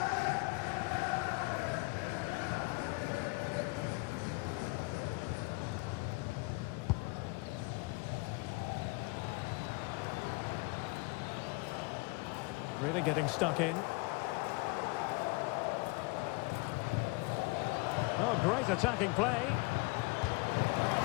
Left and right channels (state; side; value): quieter; right; 26.4 dB